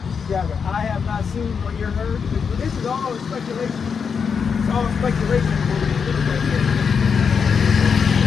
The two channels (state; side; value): quieter; right; 6.2 dB